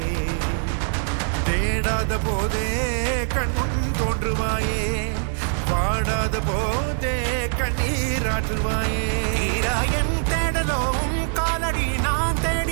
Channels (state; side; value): silent; left; 63 dB below the other